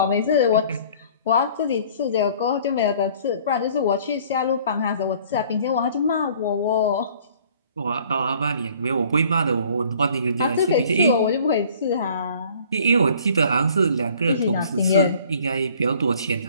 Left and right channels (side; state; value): both; inverted; correlation -0.54